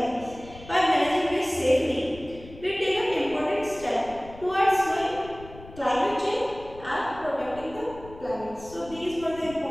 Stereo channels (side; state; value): left; noise; rumble, 18 dB below the sound